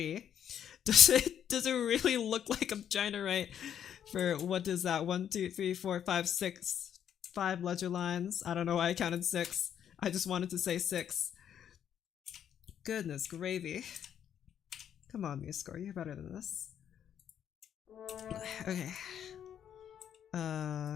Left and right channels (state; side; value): quieter; right; 9.3 dB